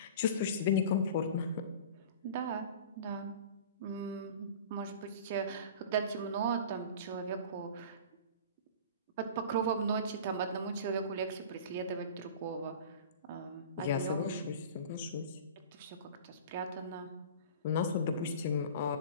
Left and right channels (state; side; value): inverted; both; correlation -0.37